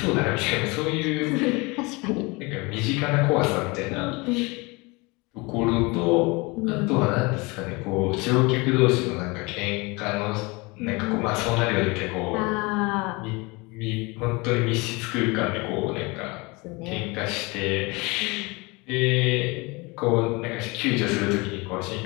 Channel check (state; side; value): quieter; right; 26.1 dB